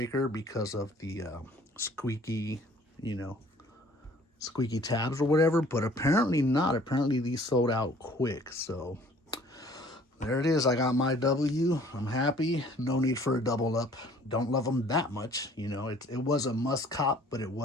because of the squeaky, you know, squeaky tabs or whatever, but apparently not. Apparently these sold out quick. So there it is. I got my W. I'm happy. No need for a double up. Don't love them that much. You know, it was a must cop, but it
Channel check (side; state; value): both; normal; correlation 0.54